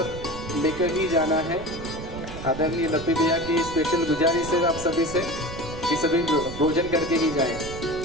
लेकर ही जाना है। आदरणीय लप्पी भैया की स्पेशल गुजारिश है आप सभी से कि सभी भोजन करके ही जाएं।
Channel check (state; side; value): noise; right; rumble, 11 dB below the sound